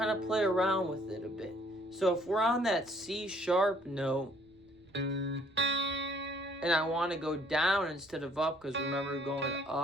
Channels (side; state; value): right; noise; rumble, 30 dB below the sound